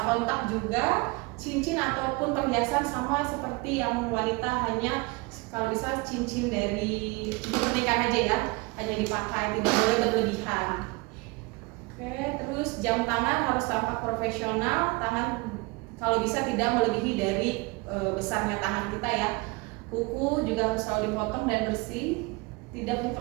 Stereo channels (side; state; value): left; quieter; 25.8 dB